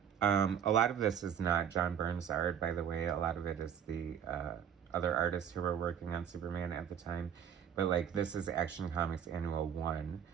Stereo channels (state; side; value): quieter; left; 8.6 dB